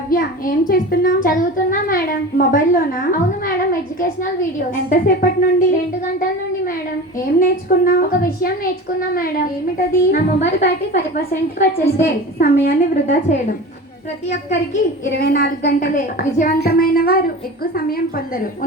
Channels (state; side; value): normal; both; correlation 0.33